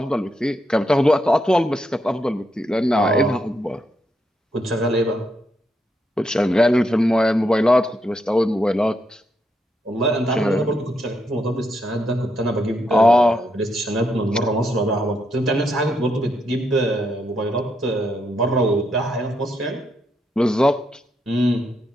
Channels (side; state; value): both; normal; correlation 0.80